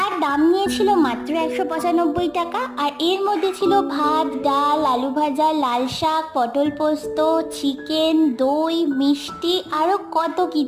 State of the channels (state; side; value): identical; both; correlation 1.00